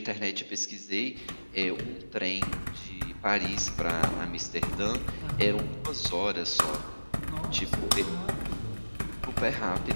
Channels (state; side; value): inverted; both; correlation -1.00